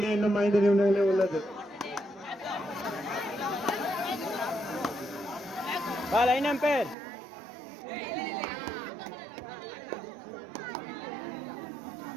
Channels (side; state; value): left; drops out; at 7.0 s